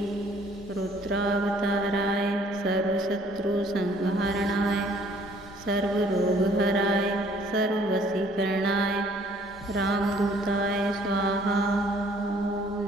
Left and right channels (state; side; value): normal; both; correlation 0.59